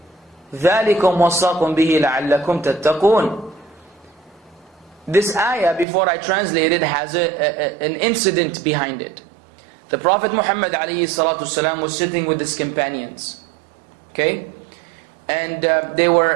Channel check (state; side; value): drops out; left; at 5.9 s